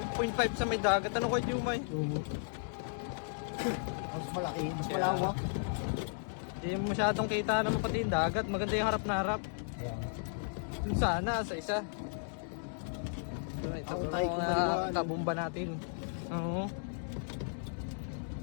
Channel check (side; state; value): right; silent; digital silence